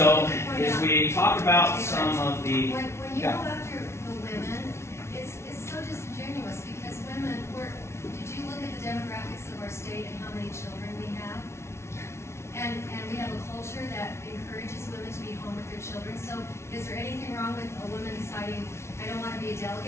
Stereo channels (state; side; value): late; right; 0.13 ms